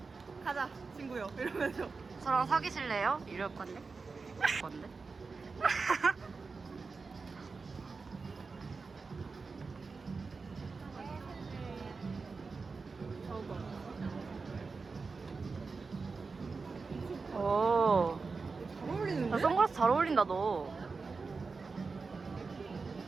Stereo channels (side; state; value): left; quieter; 4.4 dB